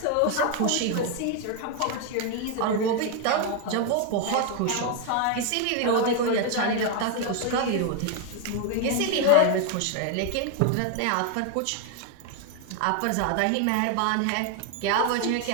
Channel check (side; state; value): both; different; correlation 0.01